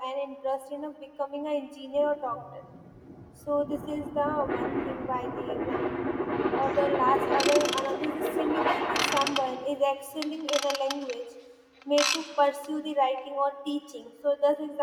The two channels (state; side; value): identical; both; correlation 1.00